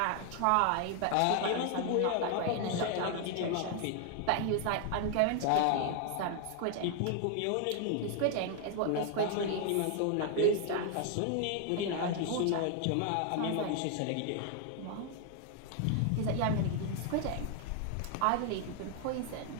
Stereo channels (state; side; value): different; both; correlation 0.00